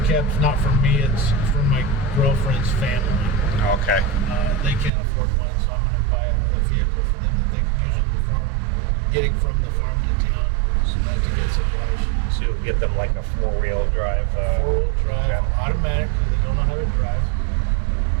not for me, it's for my girlfriend's family. Okay. They can't afford one, so I'm going to buy a vehicle for them that they can use on the farm, getting from the farm to town, so that to get supplies. So you'll get them like a four-wheel drive. Four-wheel drive, automatic, because they don't know how to drive.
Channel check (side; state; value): left; drops out; at 4.9 s